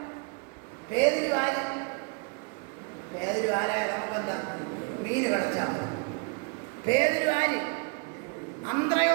പേതിരു ആര്? പേതിരു ആരായ നമുക്കെന്താ? മീൻ കിടച്ചാൽ മതി. പേതുരു ആര്?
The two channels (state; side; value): quieter; left; 32.2 dB